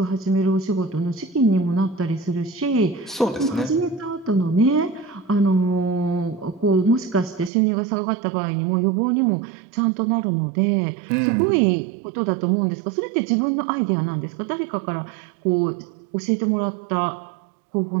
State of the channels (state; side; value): drops out; left; at 7.5 s